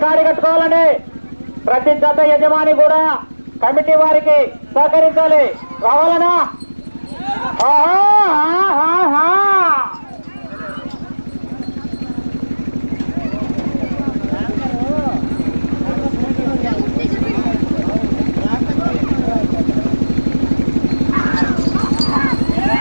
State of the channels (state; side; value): inverted; both; correlation -1.00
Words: కాడి కట్టుకోవాలని ప్రతి జత యజమాని కూడా కమిటీ వారికి సహకరించాలి. రావాలన్నా